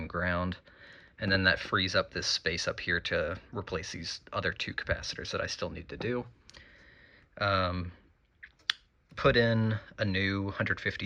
ground. And then that frees up this space up here to replace these other two capacitors that I still need to do. Put in a new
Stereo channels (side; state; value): both; identical; correlation 1.00